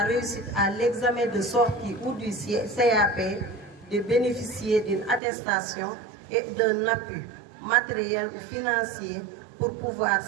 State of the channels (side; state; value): left; drops out; at 5.2 s